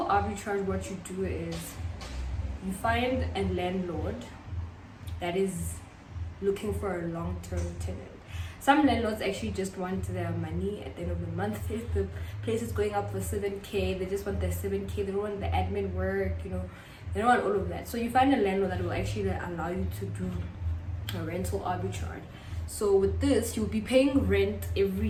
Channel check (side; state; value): both; identical; correlation 1.00